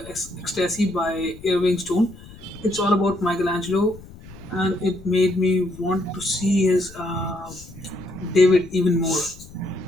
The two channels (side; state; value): left; noise; rumble, 18 dB below the sound